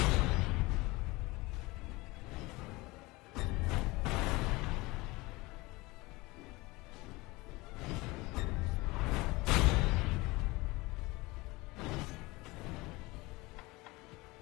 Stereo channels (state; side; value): quieter; right; 22.4 dB